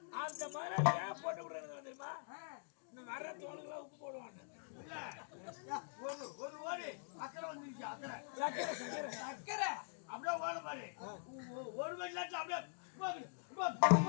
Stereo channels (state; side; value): silent; right; digital silence